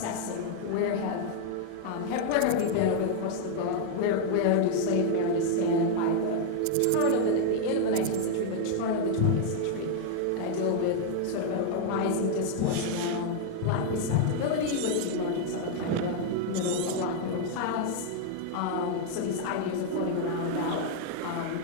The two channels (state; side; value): different; both; correlation 0.00